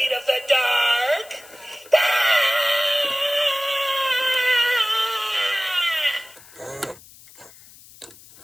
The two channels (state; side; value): noise; left; hiss, 22 dB below the sound